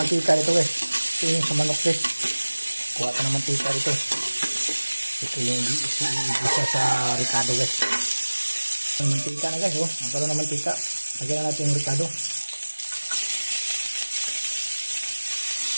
dito guys. Ito yung sa manok guys. Kuha ka ng mantika dito. Ito yung isa sa ricado guys. Yung mantika na guys, oh. Magkaroon ng mantika. Lagyan na natin yung ricado.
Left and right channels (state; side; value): inverted; both; correlation -1.00